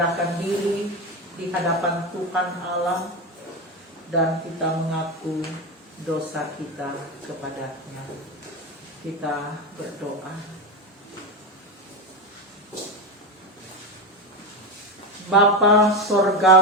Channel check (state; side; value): normal; both; correlation 0.16